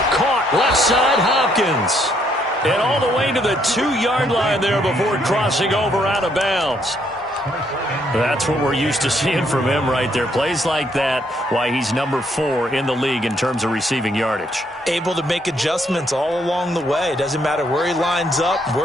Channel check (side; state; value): both; normal; correlation 0.71